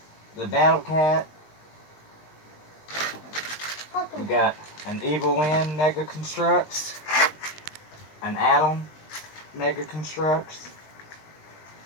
The Battle Cat. We got an Evil Lynn Mega Constructs. An Adam Mega Constructs.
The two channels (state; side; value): late; right; 20 ms